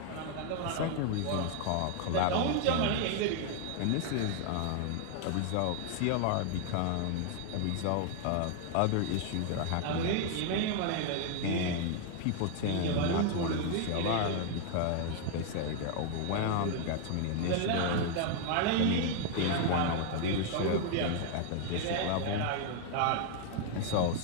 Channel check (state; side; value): different; both; correlation 0.00